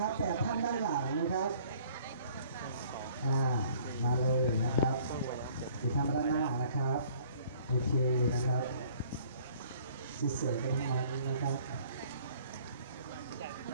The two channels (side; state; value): both; inverted; correlation -0.56